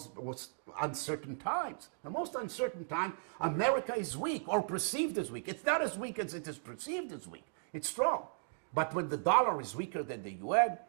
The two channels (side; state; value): left; silent; digital silence